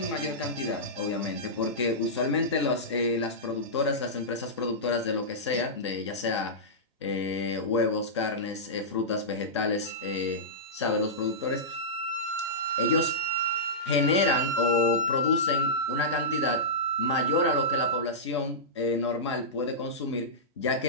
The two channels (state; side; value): normal; both; correlation -0.15